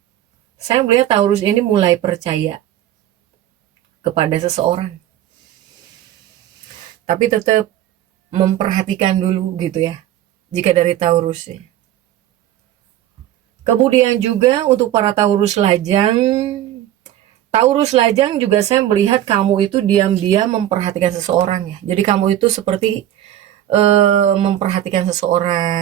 Saya melihat Taurus ini mulai percaya kepada seseorang, tapi tetap memperhatikan dulu gitu ya, jika dari Taurus ya. Kemudian juga untuk para Taurus Lajang juga saya melihat kamu itu diam-diam memperhatikan seseorang ya. Jadi kamu itu seperti memperhatikan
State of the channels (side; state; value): left; quieter; 12.4 dB